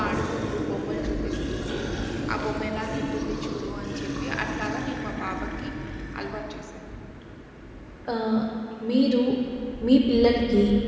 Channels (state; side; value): identical; both; correlation 1.00